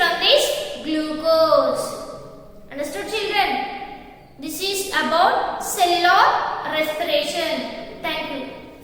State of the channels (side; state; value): both; identical; correlation 1.00